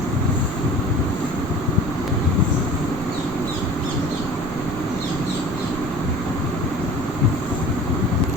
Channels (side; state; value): right; noise; rumble, 12 dB below the sound